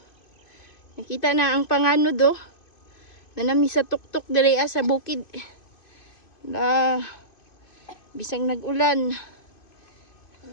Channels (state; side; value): late; right; 2.5 ms